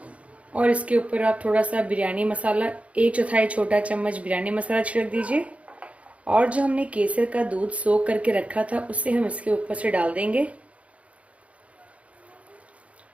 और इसके ऊपर आप थोड़ा सा बिरयानी मसाला, 1/4 छोटा चम्मच बिरयानी मसाला छिड़क दीजिए और जो हमने केसर का दूध सोख करके रखा था उसे हम इसके ऊपर से डाल देंगे।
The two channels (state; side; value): late; left; 0.064 ms